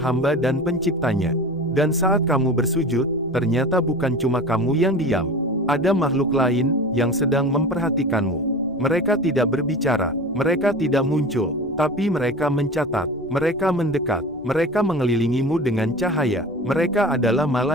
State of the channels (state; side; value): noise; right; rumble, 25 dB below the sound